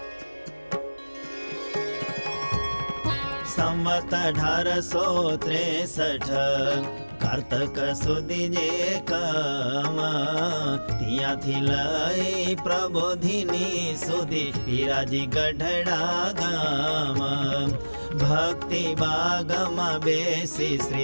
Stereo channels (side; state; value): both; inverted; correlation -1.00